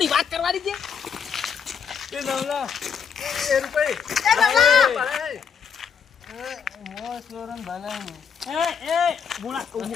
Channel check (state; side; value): quieter; right; 6.9 dB